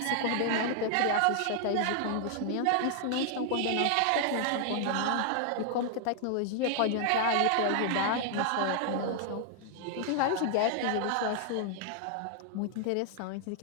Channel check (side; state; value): both; different; correlation 0.00